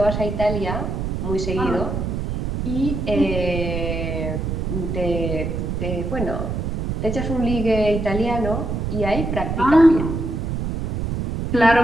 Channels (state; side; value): noise; right; rumble, 2 dB below the sound